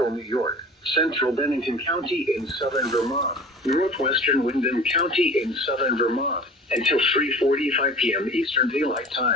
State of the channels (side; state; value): both; normal; correlation 0.41